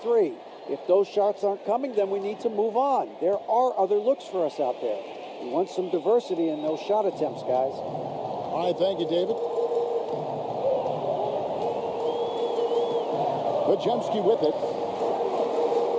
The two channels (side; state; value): both; identical; correlation 1.00